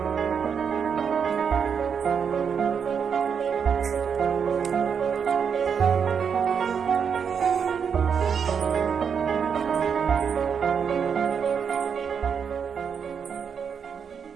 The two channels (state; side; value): quieter; left; 6.9 dB